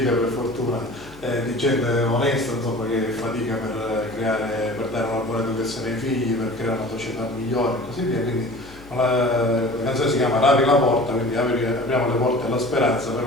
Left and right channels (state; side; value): noise; left; hum, 19 dB below the sound